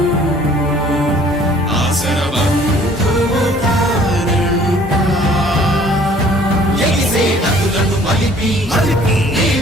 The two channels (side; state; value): both; normal; correlation 0.55